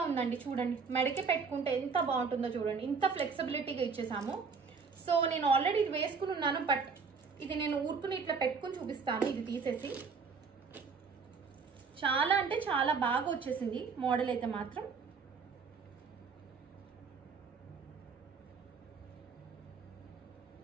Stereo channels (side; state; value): left; quieter; 5.2 dB